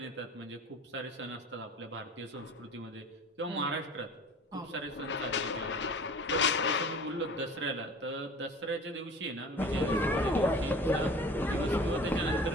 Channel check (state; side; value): normal; both; correlation 0.42